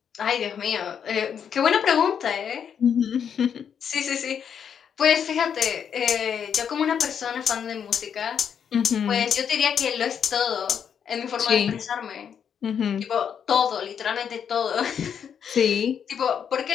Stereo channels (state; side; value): quieter; right; 7.8 dB